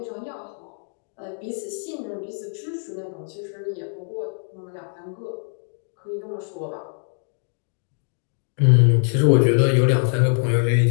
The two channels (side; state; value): right; silent; digital silence